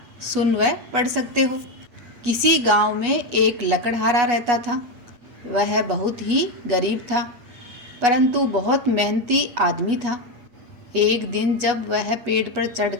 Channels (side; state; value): left; late; 8.3 ms